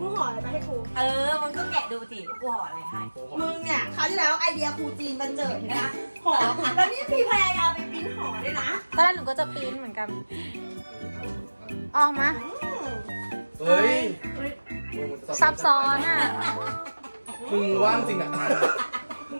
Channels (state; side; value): inverted; both; correlation -1.00